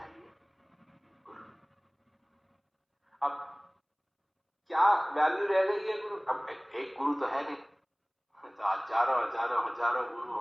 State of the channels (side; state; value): both; identical; correlation 1.00